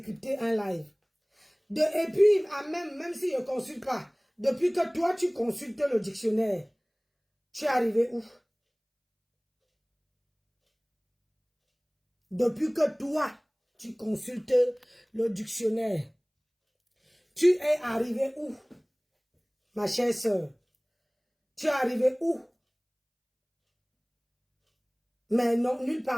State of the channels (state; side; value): identical; both; correlation 1.00